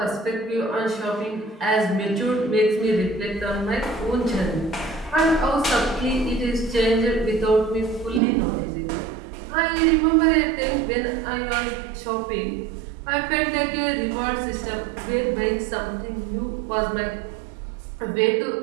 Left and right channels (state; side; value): drops out; left; at 8.2 s